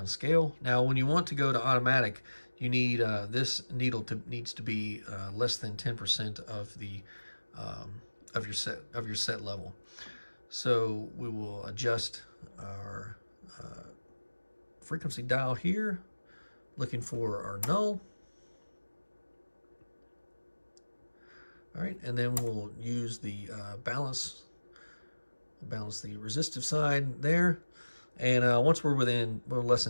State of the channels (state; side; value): inverted; both; correlation -1.00